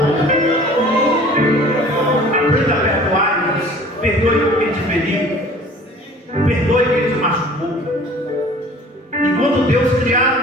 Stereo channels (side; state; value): both; normal; correlation 0.47